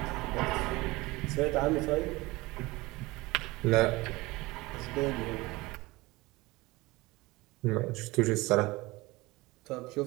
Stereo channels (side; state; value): left; quieter; 21.5 dB